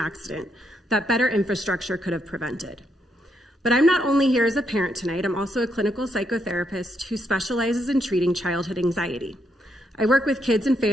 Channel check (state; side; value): normal; both; correlation 0.77